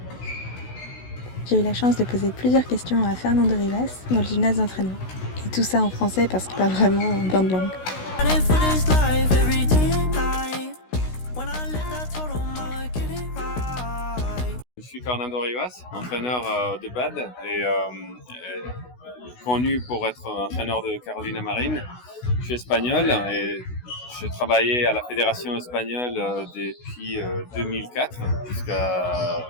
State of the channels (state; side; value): late; right; 16 ms